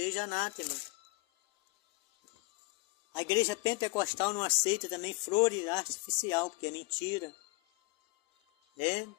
anátema. A igreja pentecostal não aceita também flores artificial, porque é mentira. É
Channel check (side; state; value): right; quieter; 27.2 dB